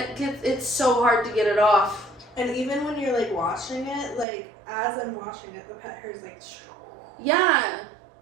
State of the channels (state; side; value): drops out; left; at 4.2 s